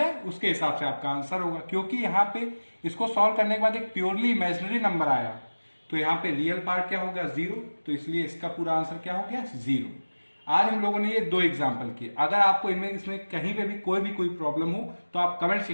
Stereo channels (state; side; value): inverted; both; correlation -1.00